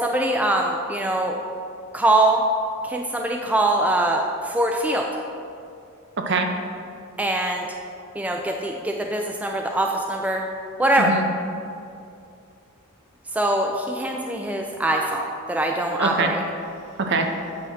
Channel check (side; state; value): both; normal; correlation 0.42